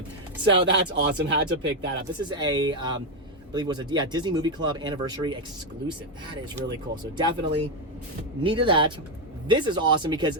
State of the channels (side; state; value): both; normal; correlation 0.05